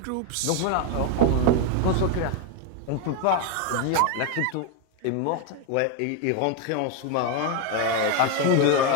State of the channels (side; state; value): both; different; correlation 0.01